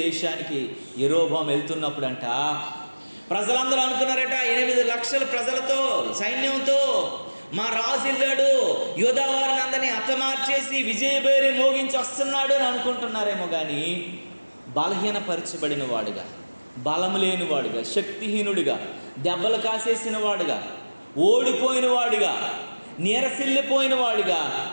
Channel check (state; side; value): inverted; both; correlation -1.00